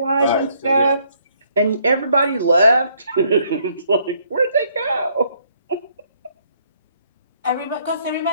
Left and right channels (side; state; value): both; inverted; correlation -0.68